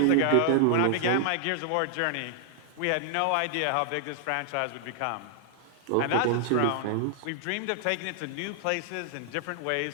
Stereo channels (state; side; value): different; both; correlation -0.01